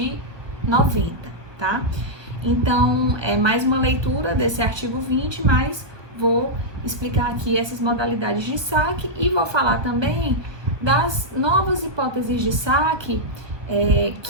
90, tá? Então, é mais uma leitura desse artigo 20, mas vou explicar aqui essas modalidades de saque e vou falar também das novas hipóteses de saque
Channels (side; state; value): left; late; 1.2 ms